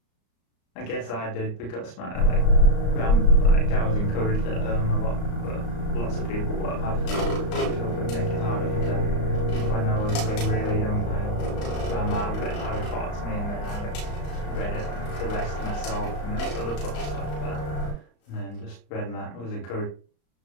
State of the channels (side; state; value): right; late; 34 ms